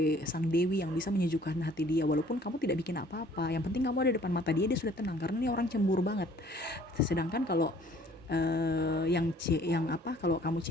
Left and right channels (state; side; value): normal; both; correlation 0.56